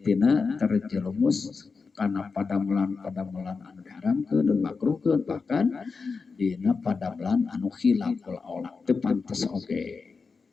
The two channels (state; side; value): quieter; right; 4.7 dB